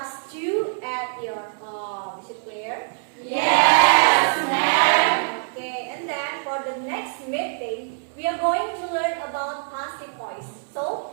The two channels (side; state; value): left; silent; digital silence